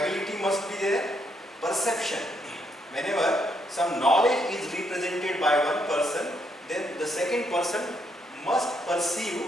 must be there. Perception. Whenever some knowledge is represented by one person, then the second person must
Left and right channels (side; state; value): both; normal; correlation 0.75